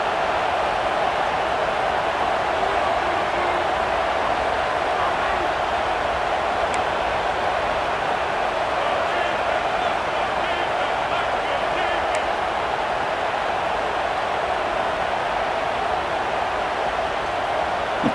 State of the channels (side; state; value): both; identical; correlation 1.00